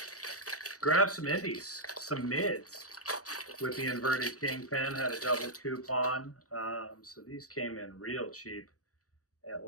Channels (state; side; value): late; right; 0.66 ms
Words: Grab some indies, some mids with the inverted kingpin. Had a double coupon. So these came in real cheap at